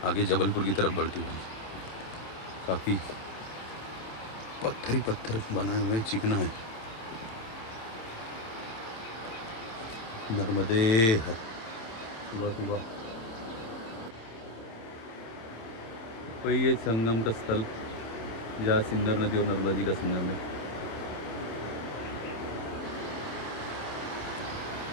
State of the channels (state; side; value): late; right; 27 ms